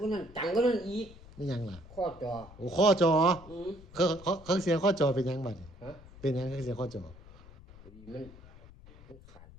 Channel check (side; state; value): left; noise; rumble, 20 dB below the sound